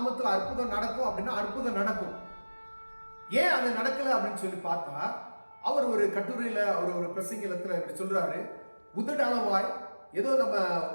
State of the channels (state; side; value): inverted; both; correlation -1.00